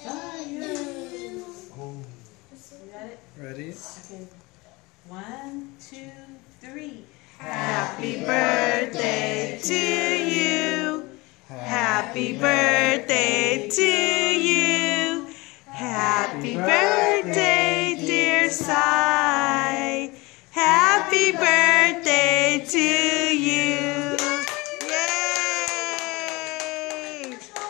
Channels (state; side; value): quieter; right; 23.6 dB